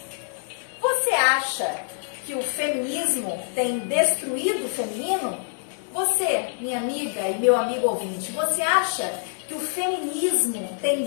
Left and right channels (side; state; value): right; silent; digital silence